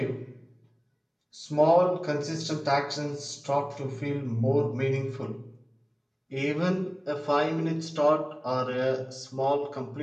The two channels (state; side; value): identical; both; correlation 1.00